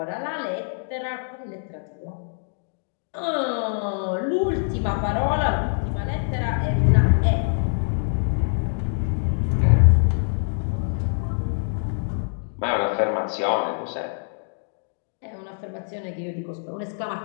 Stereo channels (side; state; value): right; silent; digital silence